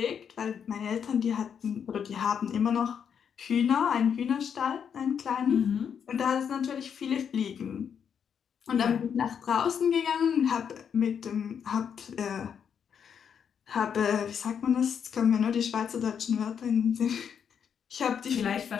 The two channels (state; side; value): quieter; right; 7.6 dB